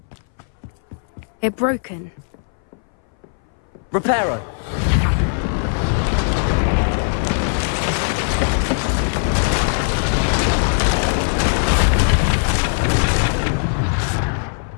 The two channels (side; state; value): right; silent; 62 dB below the other